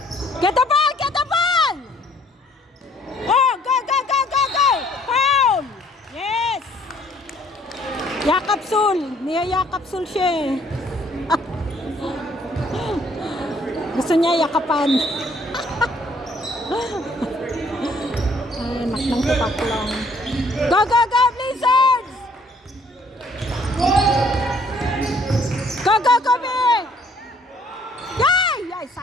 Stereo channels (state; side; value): normal; both; correlation 0.61